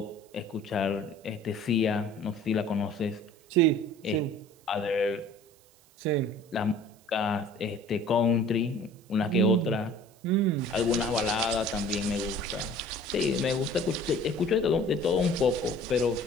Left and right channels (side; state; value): right; noise; hiss, 29 dB below the sound